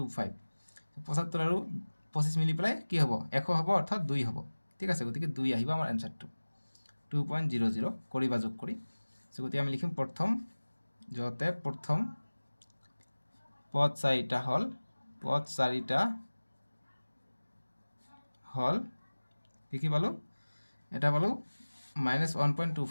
75 আর 25 মিলি পেলাই কি হবো 100 হবো অর্থাৎ 2 হবো ঠিক আছে গতিকে 2 আহিব আমার অ্যানসারটো 2.00 করিবা যোগ করি সো গতিকে আমি লিখিম প্রথম যতে প্রথম পদ 4টা হল পদ 4টা হল কি পালো এটা পালো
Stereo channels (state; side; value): inverted; both; correlation -1.00